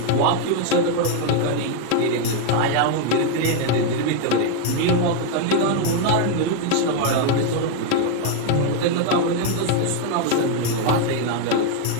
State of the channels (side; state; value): both; different; correlation 0.01